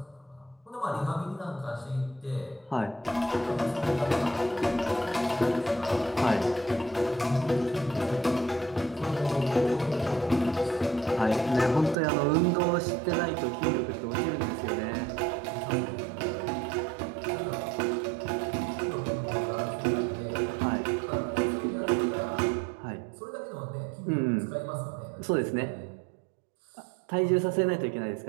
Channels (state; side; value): drops out; left; at 12.0 s